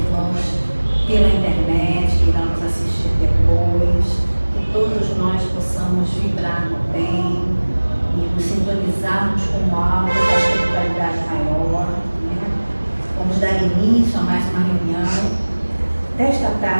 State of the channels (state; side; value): inverted; both; correlation -1.00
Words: pela internet que irão nos assistir depois, que todos nós possamos vibrar no bem e nos sintonizarmos com algo da espiritualidade maior, né? Vamos dar início a mais uma reunião desta